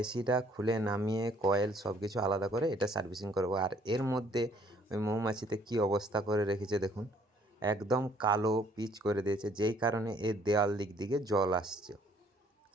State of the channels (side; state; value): both; normal; correlation 0.62